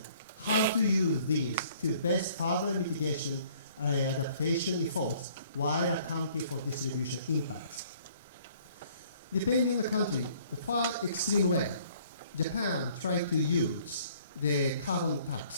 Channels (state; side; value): inverted; both; correlation -0.58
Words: how to use these to best further mitigation adaptation efforts while accounting for distribution impacts. Depending on the country, the far extreme way, Japan tried to use the carbon